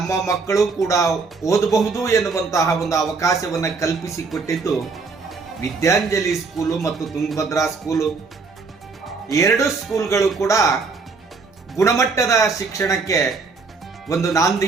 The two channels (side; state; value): left; quieter; 4.5 dB